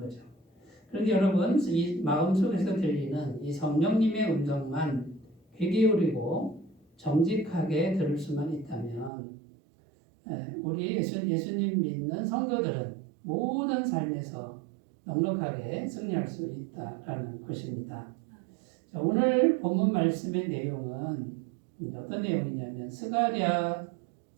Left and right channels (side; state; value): left; drops out; at 9.1 s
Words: 그런데 여러분, 이 마음속에서 들리는 이 성령님의 음성만 귀 기울이고 정직하게 들을 수만 있다면 우리 예수님 믿는 성도들은 모든 삶에서 넉넉하게 승리할 수 있다라는 것입니다. 자, 오늘 본문 말씀의 내용은 어떤 내용이냐면 스가랴서지